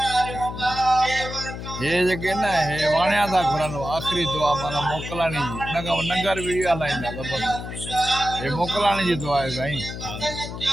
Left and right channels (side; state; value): left; noise; hum, 8 dB below the sound